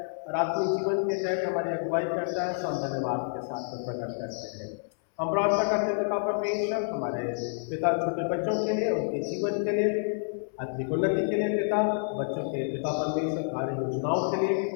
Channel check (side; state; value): right; silent; 59 dB below the other